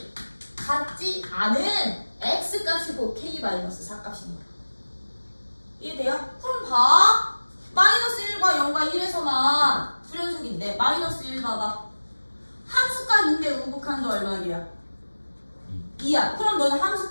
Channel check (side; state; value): both; inverted; correlation -1.00